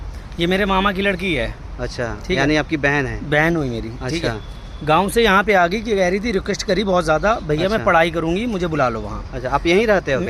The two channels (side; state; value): both; identical; correlation 1.00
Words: ये मेरे मामा की लड़की है। अच्छा ठीक है। यानी आपकी बहन है? बहन हुई मेरी। ठीक अच्छा है। गांव से यहाँ पे आ गई कि कह रही थी, रिक्वेस्ट करी बहुत ज़्यादा, भैया अच्छा। मैं पढ़ाई करूँगी, मुझे बुला लो वहाँ। अच्छा आप यहीं रहते हो